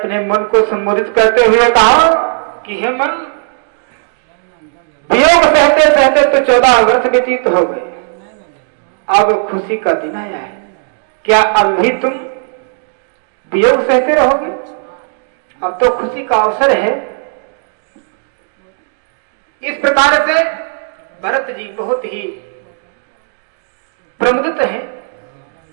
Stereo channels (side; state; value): left; silent; digital silence